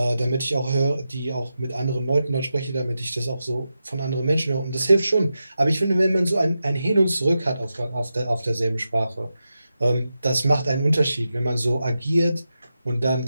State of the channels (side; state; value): both; inverted; correlation -0.90